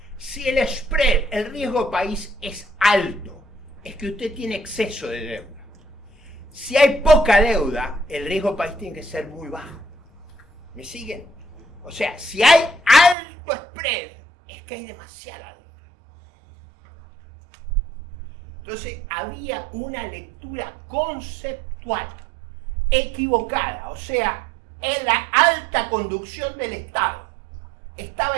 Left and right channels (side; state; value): left; drops out; at 13.2 s